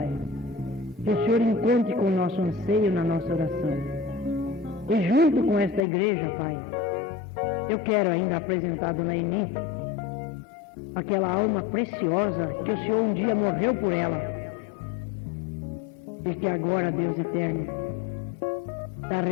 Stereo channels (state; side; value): drops out; right; at 5.8 s